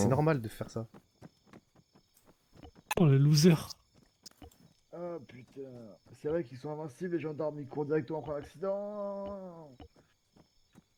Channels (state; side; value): identical; both; correlation 1.00